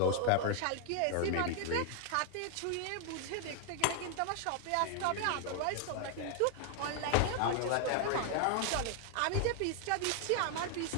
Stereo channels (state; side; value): different; both; correlation 0.00